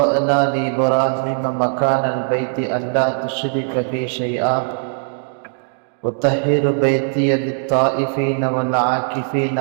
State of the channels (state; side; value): silent; left; digital silence